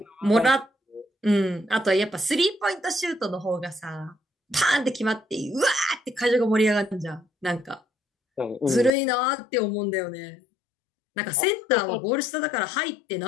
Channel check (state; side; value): drops out; right; at 8.9 s